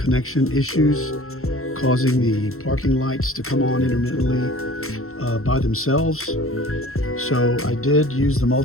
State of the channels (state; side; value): late; right; 0.63 ms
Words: issues causing the parking lights to come on intermittently by themselves. So I did use the